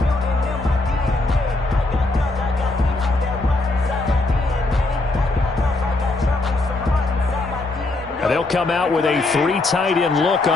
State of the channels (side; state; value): right; quieter; 3.0 dB